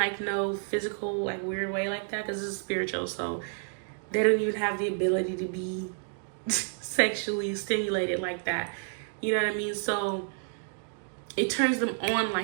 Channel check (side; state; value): left; silent; 58 dB below the other